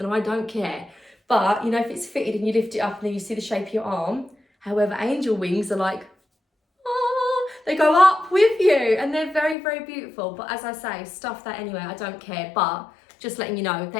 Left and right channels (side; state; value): right; drops out; at 9.6 s